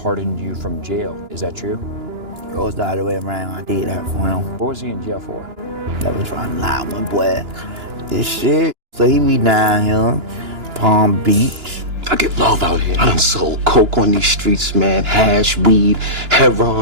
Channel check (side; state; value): left; late; 2.9 ms